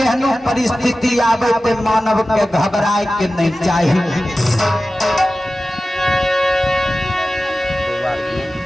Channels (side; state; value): both; normal; correlation 0.95